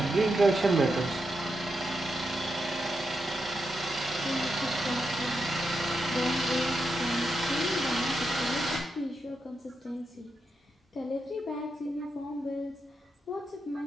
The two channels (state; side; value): normal; both; correlation 0.85